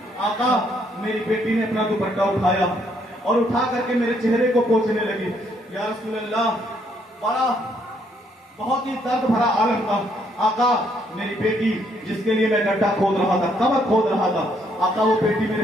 आका, मेरी बेटी ने अपना दुपट्टा उठाया और उठा करके मेरे चेहरे को पोंछने लगी। या रसूल अल्लाह, बड़ा बहुत ही दर्द भरा आलम था। आका, मेरी बेटी जिसके लिए मैं गड्ढा खोद रहा था, कबर खोद रहा था, आका वो बेटी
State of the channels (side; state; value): both; normal; correlation 0.70